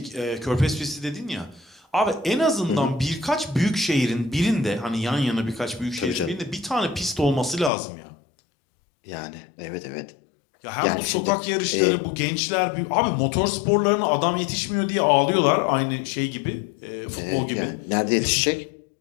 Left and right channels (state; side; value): drops out; right; at 7.7 s